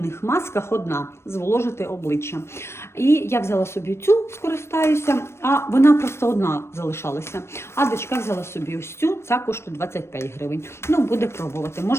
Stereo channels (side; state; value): right; late; 0.13 ms